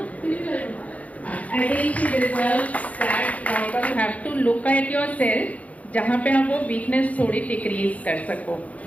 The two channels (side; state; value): right; late; 0.069 ms